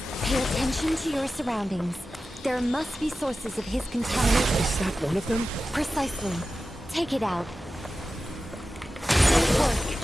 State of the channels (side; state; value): both; normal; correlation 0.93